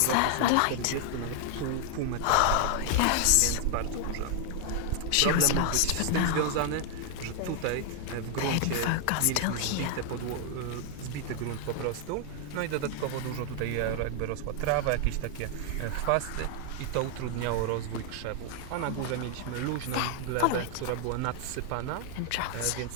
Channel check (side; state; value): both; different; correlation 0.00